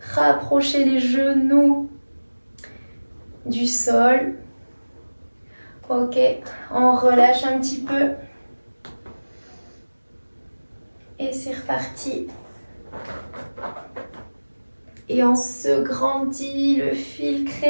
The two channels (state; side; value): inverted; both; correlation -1.00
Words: rapprocher les genoux du sol. Ok, on relâche un petit peu. Et c'est reparti. Et on se grandit, le fil